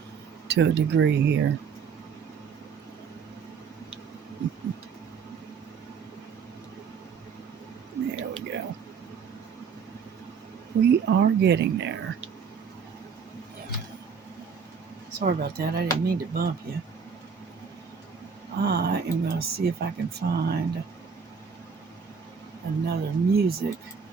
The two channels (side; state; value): left; quieter; 6.2 dB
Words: to a degree here. There we go. We are getting there. Sorry about that. I didn't mean to bump you. I am going to see if I can find another music